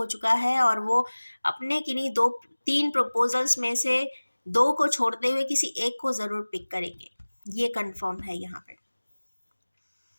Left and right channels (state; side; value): inverted; both; correlation -1.00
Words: चुका है और वो अपने किन्हीं दो तीन प्रपोजल्स में से दो को छोड़ते हुए किसी एक को ज़रूर पिक करेंगे, ये कंफर्म है यहाँ पर।